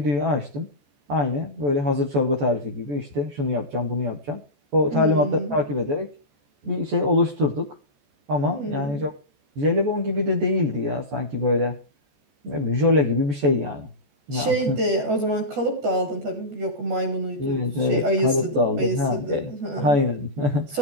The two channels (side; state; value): left; late; 14 ms